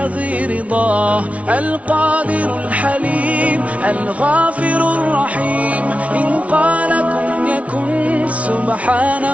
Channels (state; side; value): late; left; 0.065 ms